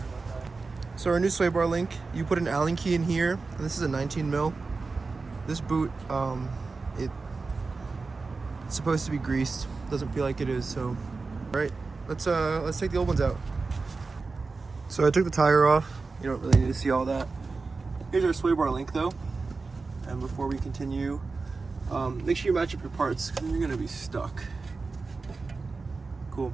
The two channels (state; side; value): quieter; left; 4.1 dB